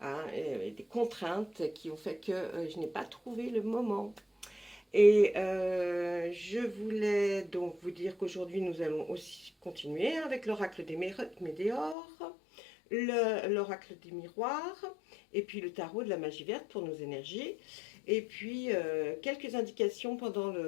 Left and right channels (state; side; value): drops out; right; at 12.0 s